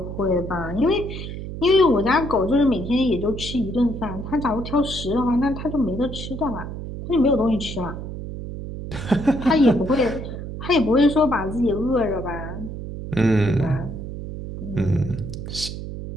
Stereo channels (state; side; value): noise; right; hum, 8 dB below the sound